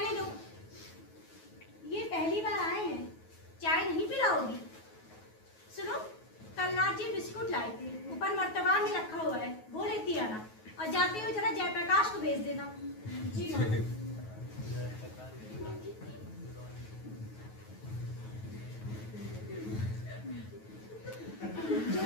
दो, ये पहली बार आए हैं, चाय नहीं पिलाओगी? सुनो, कल नाथ जी बिस्कुट लाए थे, ऊपर मर्तबा में रखा हुआ है, वो लेती आना, और जाते हुए जरा जयप्रकाश को भेज देना। जी माँ।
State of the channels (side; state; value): right; late; 9.3 ms